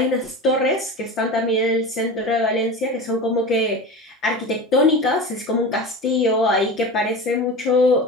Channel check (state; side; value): normal; both; correlation 0.30